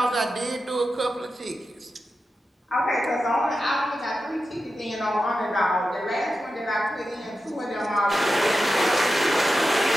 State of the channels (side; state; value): both; normal; correlation 0.91